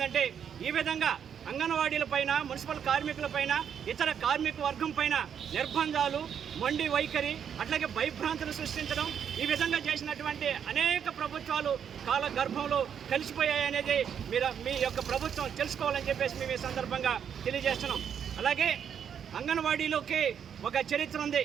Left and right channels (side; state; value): left; quieter; 8.1 dB